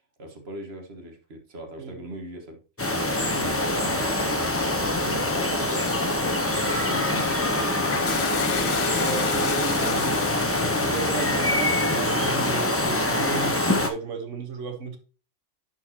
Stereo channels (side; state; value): both; normal; correlation -0.05